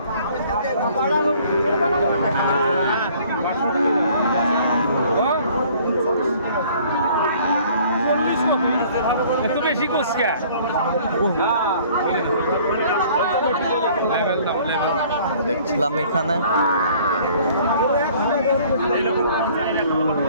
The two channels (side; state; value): both; inverted; correlation -0.55